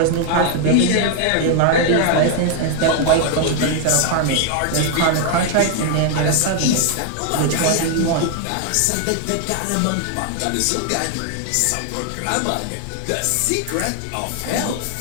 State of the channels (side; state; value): both; different; correlation 0.00